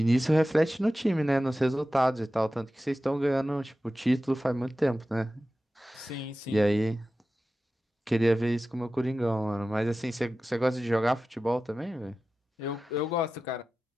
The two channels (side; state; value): both; normal; correlation 0.94